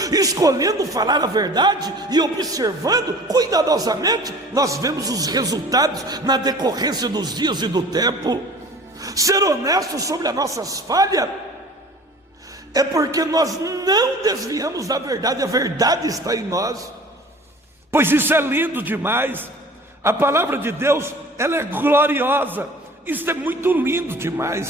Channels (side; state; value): both; normal; correlation 0.45